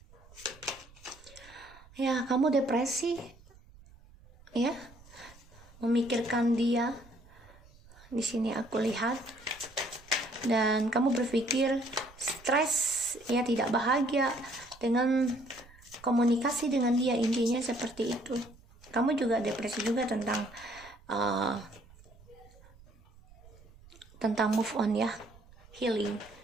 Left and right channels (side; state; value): right; noise; rumble, 24 dB below the sound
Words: Ya, kamu depresi. Ya. Memikirkan dia. Di sini aku lihat. Dan kamu berpikir stres, ya, tidak bahagia dengan komunikasi dengan dia, intinya seperti itu. Kamu juga depresi juga tentang move on ya, healing